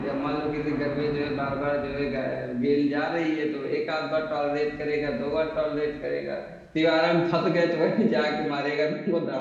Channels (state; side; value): identical; both; correlation 1.00